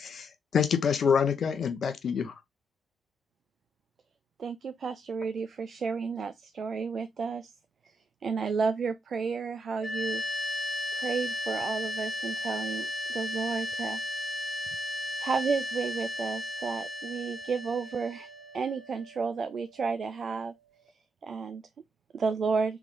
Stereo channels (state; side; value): normal; both; correlation 0.78